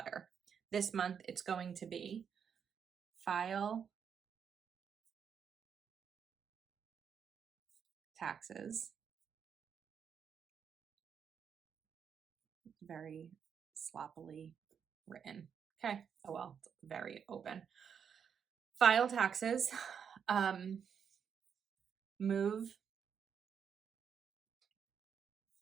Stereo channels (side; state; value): left; quieter; 7.4 dB